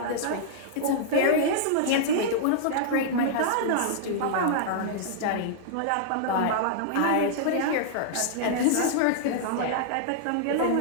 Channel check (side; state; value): both; different; correlation -0.01